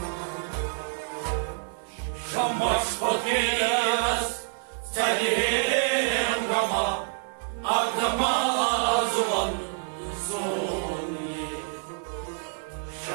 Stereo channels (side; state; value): left; silent; 58 dB below the other